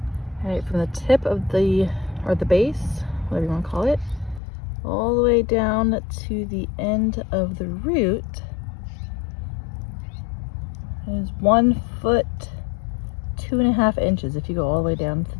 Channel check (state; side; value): drops out; right; at 4.4 s